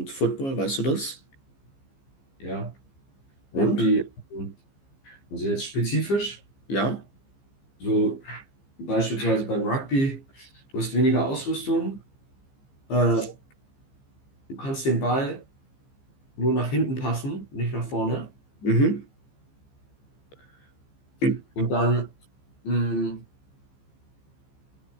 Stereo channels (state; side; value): late; right; 15 ms